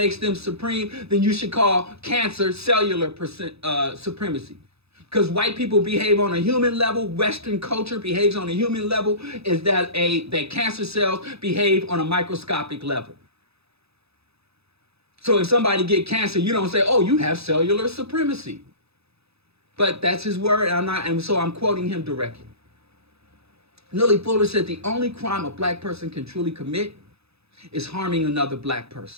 them supreme, then you should call cancer cellular supremacy. Because white people behave on a human level, Western culture behaves on a human level, is that cancer cells behave on a microscopic level. So if somebody get cancer, you don't say, oh, you have cellular supremacy. But that's his word, and so I'm quoting him directly. Neely Fuller said the only crime a black person can truly commit is harming another black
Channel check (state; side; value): late; left; 0.78 ms